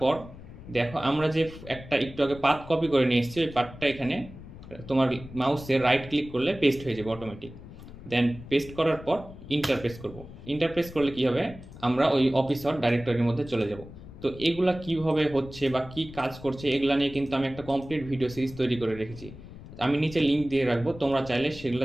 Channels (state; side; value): noise; left; rumble, 16 dB below the sound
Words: দেখো আমরা যে একটা একটু আগে পাথ কপি করে নিয়ে এসেছি ওই পাথটা এখানে তোমার মাউসে রাইট ক্লিক করলে পেস্ট হয়ে যাবে অটোমেটিক। দেন পেস্ট করার পর ইন্টার প্রেস করব। ইন্টার প্রেস করলে কী হবে, আমরা ওই অফিসার ডাইরেক্টরির মধ্যে চলে যাব। তো এগুলা কিভাবে হচ্ছে বা কি কাজ করছে এগুলা নিয়ে কিন্তু আমি একটা কমপ্লিট ভিডিও সিরিজ তৈরি করে রেখেছি। আমি নিচে লিঙ্ক দিয়ে রাখবো, তোমরা চাইলে সেগুলো